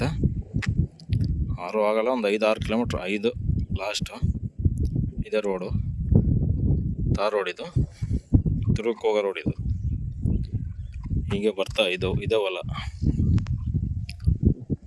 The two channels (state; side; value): identical; both; correlation 1.00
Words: 6 ಆಗಲ್ಲ, ಒಂದು 5-6 ಕಿಲೋಮೀಟ್ರ್, 5 ಲಾಸ್ಟು. ಇದೇ ರೋಡು, ತಾರ್ ರೋಡ್. ಇದು ದುರ್ಗಕ್ಕೆ ಹೋಗೋ ರೋಡ್. ಇದು ಹೀಗೆ ಬರ್ತಾ ಇದೇ ಹೊಲ